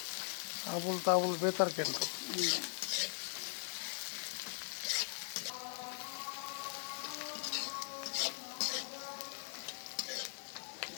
আবুল তাবুল বেতার কেন?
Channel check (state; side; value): silent; right; digital silence